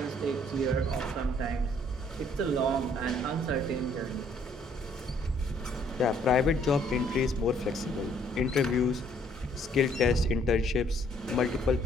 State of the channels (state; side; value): normal; both; correlation 0.64